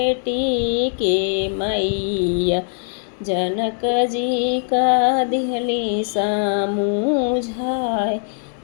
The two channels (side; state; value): right; silent; 64 dB below the other